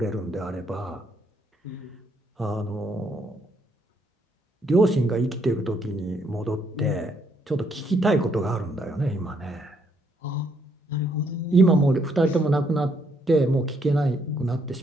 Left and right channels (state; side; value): normal; both; correlation 0.72